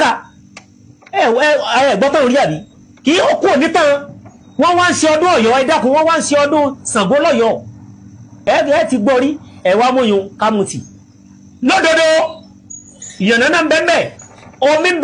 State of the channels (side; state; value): both; identical; correlation 1.00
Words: ẹ gbọ́tàn orí àbí kì í kú onítàn wọ́n wá ń ṣe ọdún Ọ̀yọ́ ẹ dákun wọ́n wá ń ṣe ọdún Ṣàngó lọ́yọ́ ẹ ti gbọ́ rí ẹ̀wà múyun kámutì lódodo ìyànnà náà ń bẹ́ẹ̀ omi ń